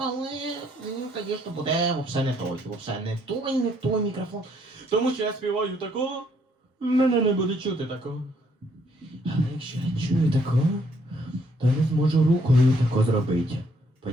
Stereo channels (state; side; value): normal; both; correlation 0.68